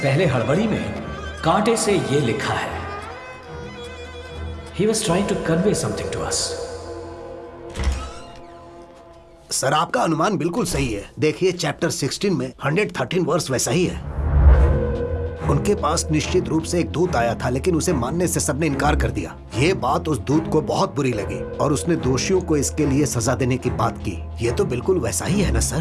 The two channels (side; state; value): both; identical; correlation 1.00